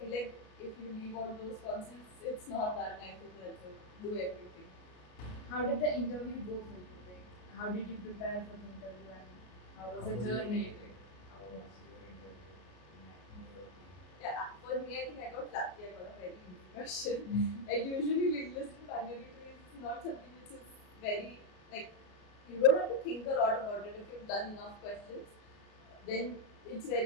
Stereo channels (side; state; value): right; late; 33 ms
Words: like if you leave out those concepts, it's not that nice as well. So do everything. How did the interview go for you? Like, how did you prepare for the interview and how was the journey? How was your interview in your opinion? Yeah, for me, I think I got lucky. I got a very easy question. Like usually, linked list and binary trees is not something which is very like you don't have to think a lot about it. If you've done enough questions, then it's